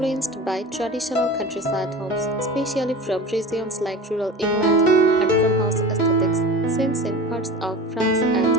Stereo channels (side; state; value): both; normal; correlation 0.34